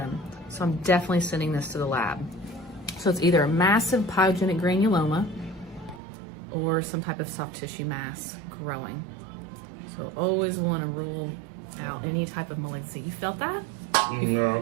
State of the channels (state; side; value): drops out; left; at 6.0 s